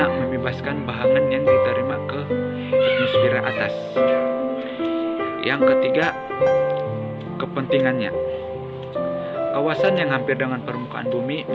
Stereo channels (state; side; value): identical; both; correlation 1.00